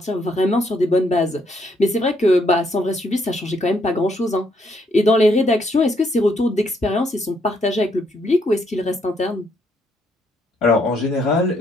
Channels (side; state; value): both; normal; correlation 0.72